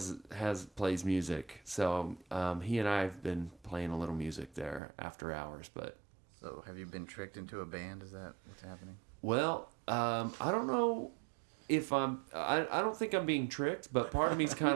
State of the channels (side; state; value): left; drops out; at 4.8 s